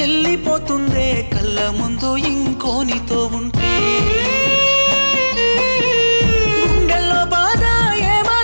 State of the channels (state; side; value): inverted; both; correlation -1.00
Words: వెళ్ళిపోతుందే కళ్ళ ముందు ఇంకోనితో ఉంటే. గుండెల్లో బాధ